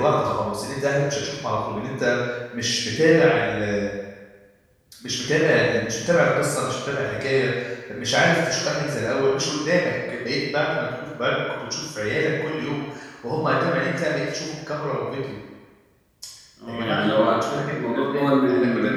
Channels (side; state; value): both; identical; correlation 1.00